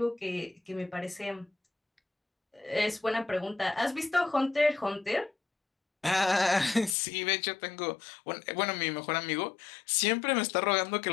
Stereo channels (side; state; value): right; drops out; at 7.0 s